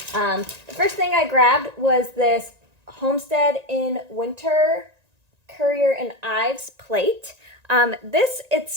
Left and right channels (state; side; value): late; left; 1.9 ms